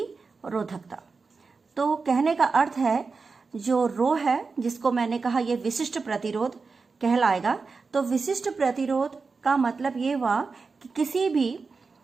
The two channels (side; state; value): left; quieter; 4.5 dB